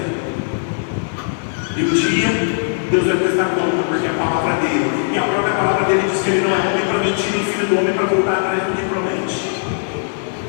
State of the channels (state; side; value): silent; right; digital silence